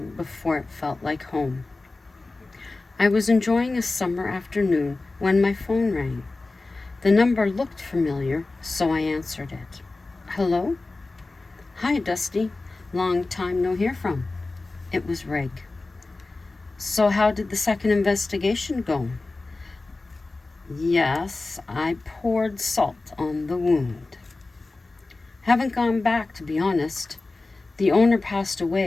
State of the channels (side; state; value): right; quieter; 3.3 dB